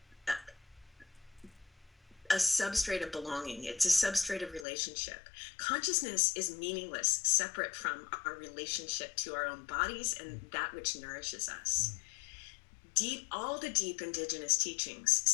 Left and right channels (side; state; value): right; drops out; at 4.7 s